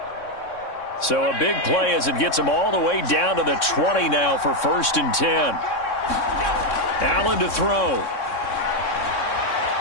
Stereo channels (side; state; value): right; late; 3.6 ms